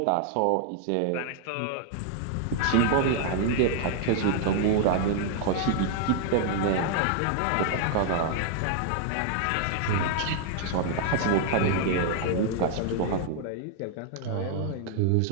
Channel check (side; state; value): both; different; correlation 0.00